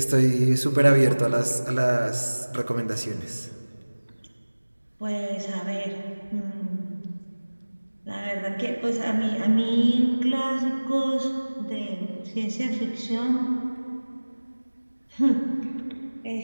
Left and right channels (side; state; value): both; inverted; correlation -1.00